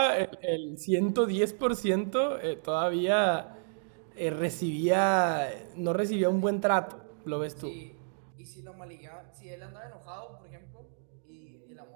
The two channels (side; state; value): left; silent; digital silence